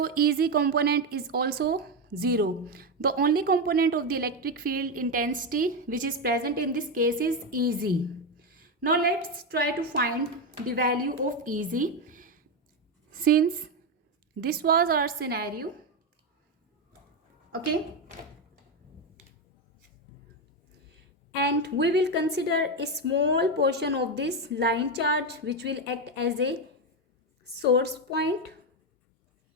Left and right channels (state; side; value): normal; both; correlation 0.09